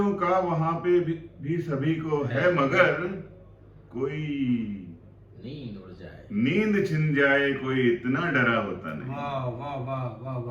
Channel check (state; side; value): identical; both; correlation 1.00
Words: का वहां पे भी सभी को है मगर कोई नींद उड़ जाए, नींद छिन जाए कोई इतना डरा होता नहीं। वाह वाह वाह वाह